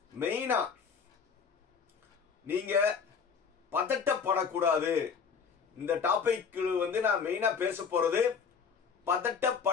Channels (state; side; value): quieter; right; 6.2 dB